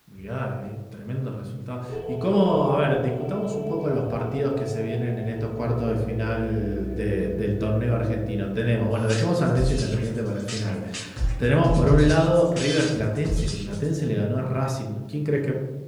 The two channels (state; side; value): identical; both; correlation 1.00